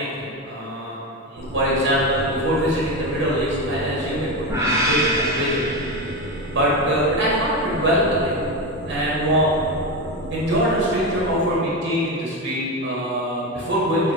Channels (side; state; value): both; normal; correlation 0.16